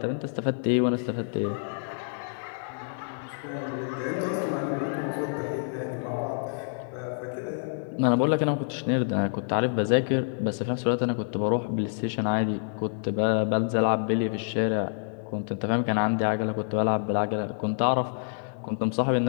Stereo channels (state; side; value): silent; right; digital silence